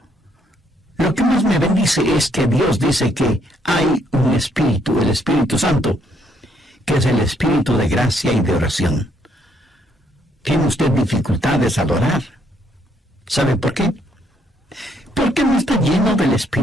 lo que más me bendice es que Dios dice que hay un Espíritu, el Espíritu Santo, que es el Espíritu de gracia y de oración. ¿Tiene usted dificultades al orar? ¿Sabe por qué? Porque no está lleno del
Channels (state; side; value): normal; both; correlation 0.70